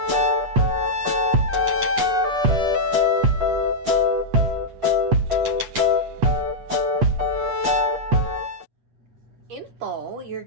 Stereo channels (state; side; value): late; left; 8.4 ms